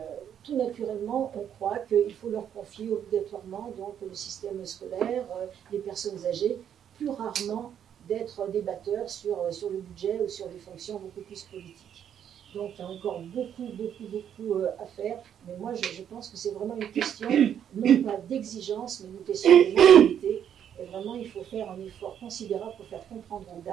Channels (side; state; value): left; quieter; 9.2 dB